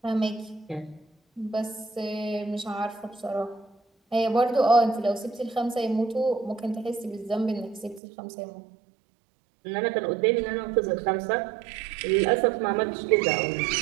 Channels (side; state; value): left; drops out; at 8.0 s